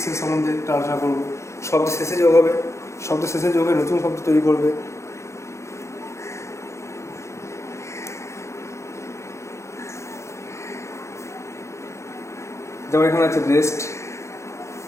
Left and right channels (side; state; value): right; late; 0.14 ms